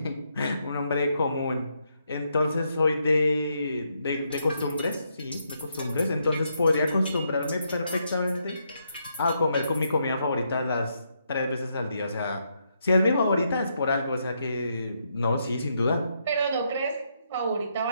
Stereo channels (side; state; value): both; inverted; correlation -0.78